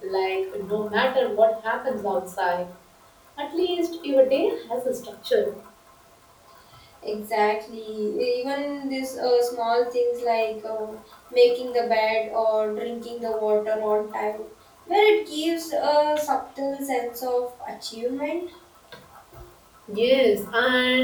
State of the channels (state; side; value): identical; both; correlation 1.00